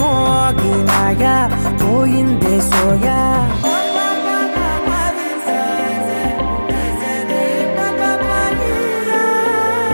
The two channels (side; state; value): both; inverted; correlation -1.00